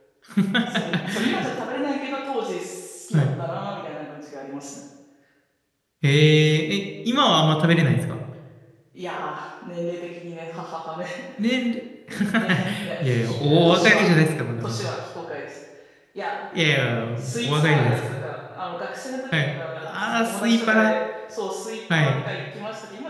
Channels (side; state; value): both; identical; correlation 1.00